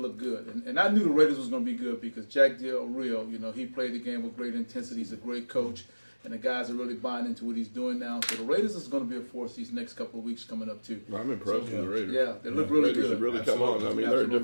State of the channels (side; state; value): both; inverted; correlation -1.00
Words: good. And I knew the Raiders was going to be good because Jack Del Rio, he played the game with great intensity. He's a great coach, and the guys are really buying into what he's doing now. So the Raiders is going to be a force these next couple of weeks coming up too. I'm impressed with the Raiders. Yeah, they look really Raiders good. have really come on. I mean, they're a Absolutely.